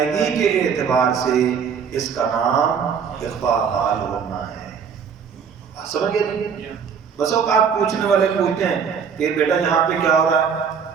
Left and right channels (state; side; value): quieter; left; 6.8 dB